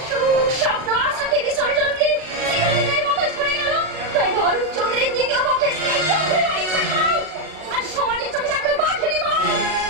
সুখ স্বপ্ন আশাকে বিসর্জন দিয়ে চিরদিনের মতো ঝরে গেল। তাই অরূপ চৌধুরীর দ্বিতীয় পক্ষের স্ত্রী চৌধুরী বাড়ি ছাড়াও আর সমাজের চোখে থাকলে বাঘে নিব।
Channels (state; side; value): late; left; 38 ms